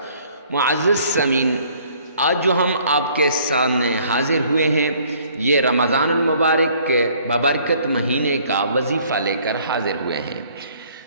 معزز سامعین، آج جو ہم آپ کے سامنے حاضر ہوئے ہیں یہ رمضان المبارک کے ببرکت مہینے کا وظیفہ لے کر حاضر ہوئے ہیں۔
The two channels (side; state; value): both; inverted; correlation -0.59